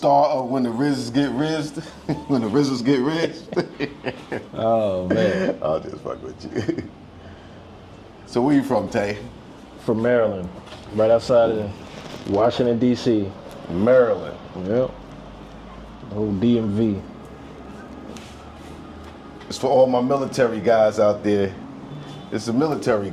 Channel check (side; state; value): both; identical; correlation 1.00